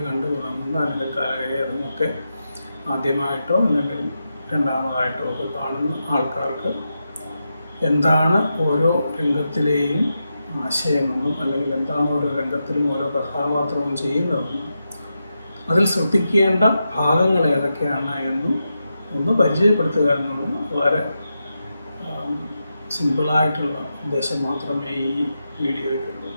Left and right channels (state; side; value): inverted; both; correlation -0.88